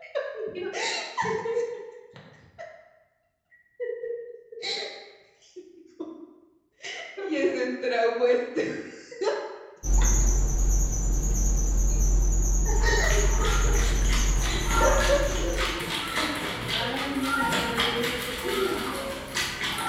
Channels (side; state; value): both; identical; correlation 1.00